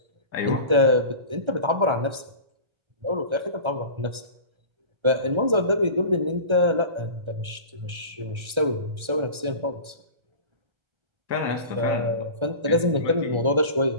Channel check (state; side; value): late; left; 1.3 ms